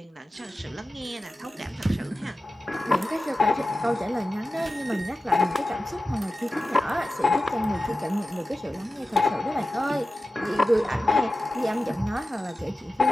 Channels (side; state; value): both; normal; correlation 0.94